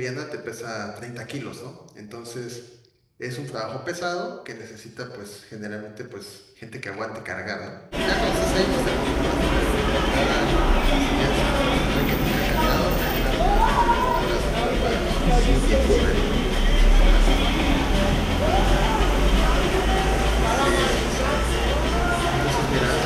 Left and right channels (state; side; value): identical; both; correlation 1.00